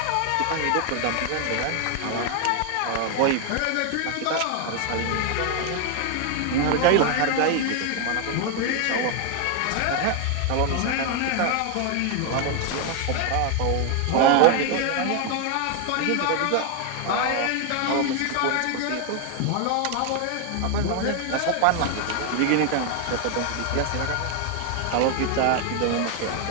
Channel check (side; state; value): both; different; correlation 0.00